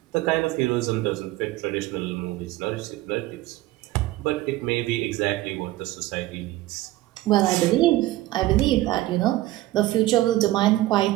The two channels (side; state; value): left; quieter; 16.6 dB